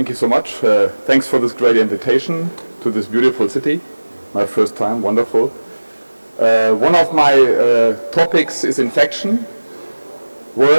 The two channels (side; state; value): both; inverted; correlation -1.00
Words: you so much. Thanks for this great invitation to this beautiful city. My first time, wonderful. One of my topics is infection,